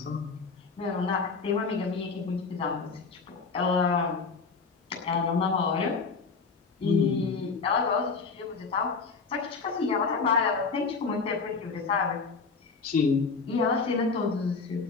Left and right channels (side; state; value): right; quieter; 4.7 dB